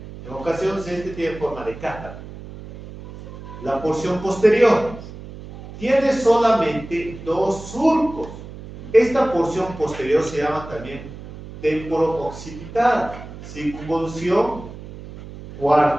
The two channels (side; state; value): right; noise; hum, 14 dB below the sound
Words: En ocasiones tiene forma de cátara. La porción posterior tiene solamente dos surcos. Esta porción posterior se llama también temporo-occipital, circunvolución